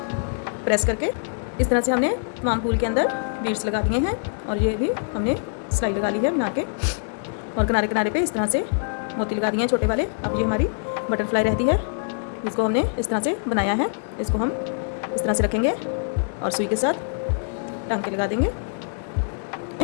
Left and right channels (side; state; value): right; silent; 60 dB below the other